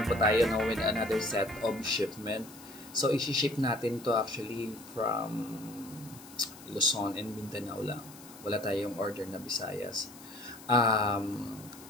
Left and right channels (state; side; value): noise; left; hiss, 19 dB below the sound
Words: po tayo no, with another set of shipment. So, isi-ship natin to actually from Luzon and Mindanao lang. Wala tayong order na Visayas.